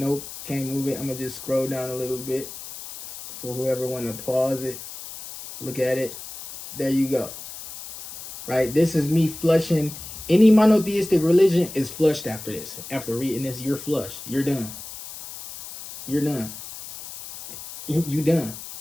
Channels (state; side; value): noise; left; hiss, 12 dB below the sound